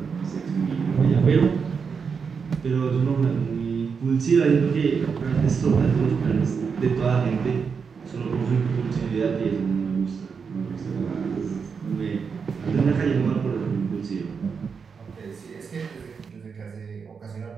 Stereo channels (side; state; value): left; quieter; 5.8 dB